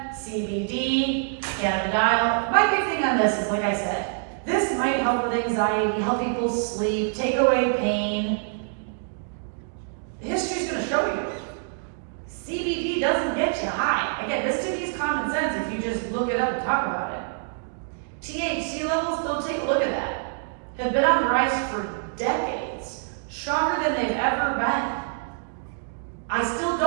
CBD, cannabidiol. My big thing on this is, like I said, this might help with anxiety, help people sleep, take away pain. History's going to show you. CBD doesn't get you high. Again, this to me is common sense if you just look it up and talk about it. THC levels, go take a look at that, have been on the rise for decades, stronger than they've ever been. I still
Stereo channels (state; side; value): silent; left; digital silence